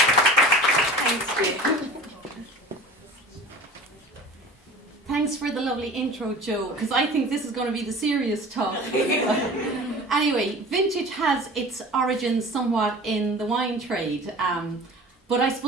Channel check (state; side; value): normal; both; correlation 0.41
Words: Thanks, Jane. Thanks for the lovely intro, Joe, because I think this is going to be the serious talk. Anyway, vintage has its origins somewhat in the wine trade, but I